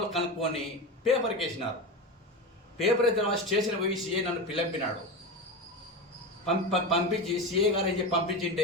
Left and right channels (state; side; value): normal; both; correlation 0.22